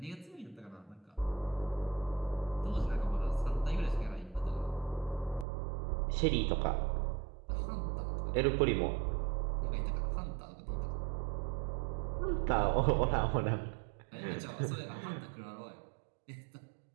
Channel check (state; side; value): drops out; left; at 5.5 s